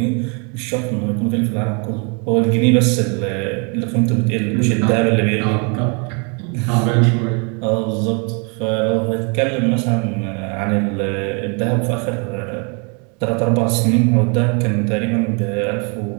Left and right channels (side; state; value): left; quieter; 35.3 dB